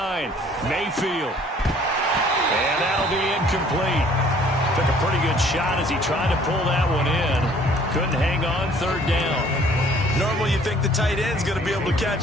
Mayfield. And that'll be incomplete. Took a pretty good shot as he tried to pull that one in. Couldn't hang on, third down. Normally you think the tight end's going to be able to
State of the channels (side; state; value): both; normal; correlation 0.57